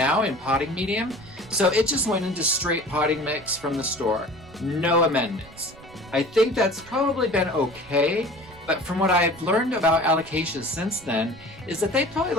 in potting medium, so it just went into straight potting mix from the store. No amendments. I think that's probably been okay, but from what I've learned about Alocasias since then, is that they probably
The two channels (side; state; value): right; noise; rumble, 21 dB below the sound